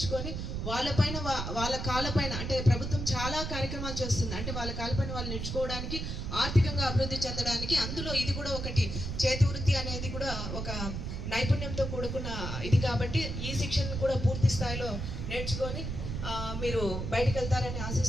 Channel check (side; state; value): right; noise; rumble, 4 dB below the sound